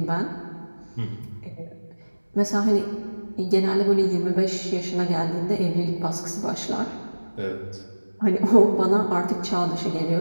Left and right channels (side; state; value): both; inverted; correlation -1.00